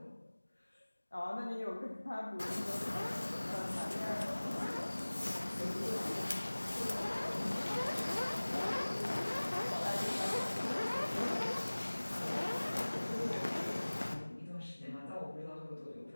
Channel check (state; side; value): inverted; both; correlation -1.00